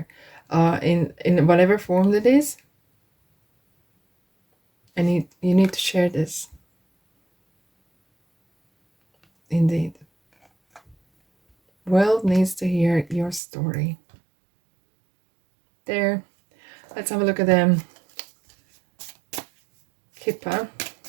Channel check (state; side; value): drops out; left; at 13.4 s